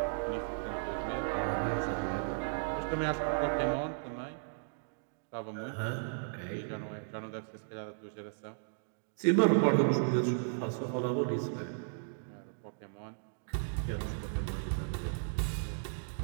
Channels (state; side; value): silent; left; digital silence